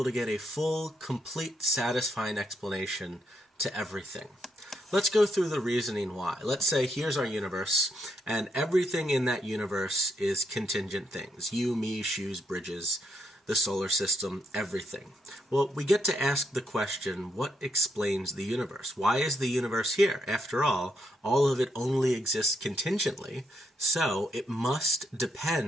to get a full, complete, satisfying explanation to everything. Let's go through the reasoning why. Let's say here's our universe, and everything in that universe is contingent things. You, me, shoes, bridges, the solar system, everything. Well, we get to ask the question, what explains the universe? Why is the universe here? After all of it only exists contingently, so it must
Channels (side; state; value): both; normal; correlation 0.78